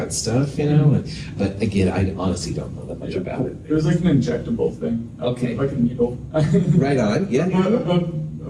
stuff, you know? But again, I honestly don't know that much about it. It was like an injectable thing. Okay. Like a needle. Right on, yeah.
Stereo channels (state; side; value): identical; both; correlation 1.00